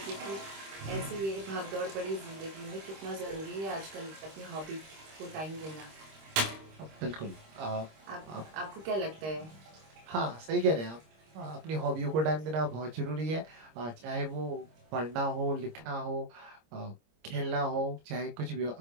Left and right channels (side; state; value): left; late; 26 ms